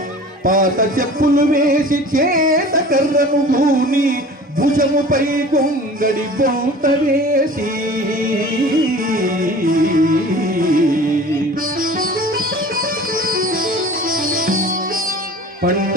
బూని భుజముపై గొంగడి బౌత వేసి పంట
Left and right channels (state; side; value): normal; both; correlation 0.42